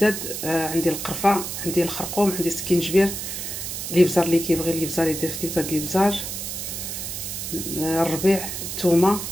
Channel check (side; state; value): right; noise; hiss, 6 dB below the sound